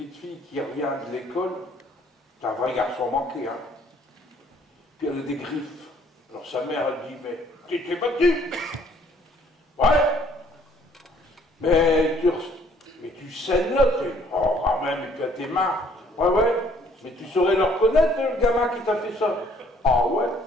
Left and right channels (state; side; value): normal; both; correlation 0.61